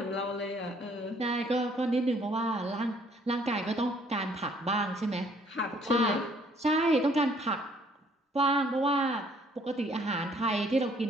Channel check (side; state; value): both; normal; correlation 0.62